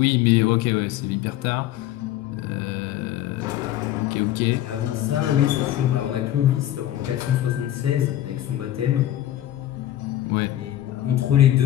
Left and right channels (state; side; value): quieter; right; 13.1 dB